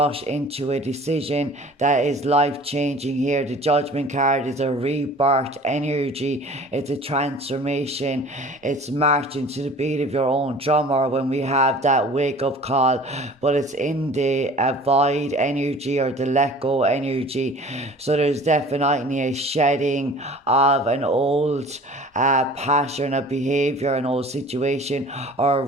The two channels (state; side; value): normal; both; correlation 0.45